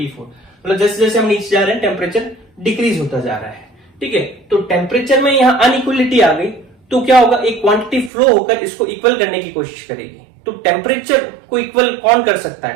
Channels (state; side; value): drops out; left; at 8.1 s